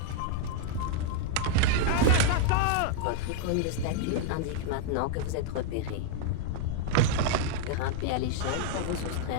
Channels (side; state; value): both; different; correlation -0.01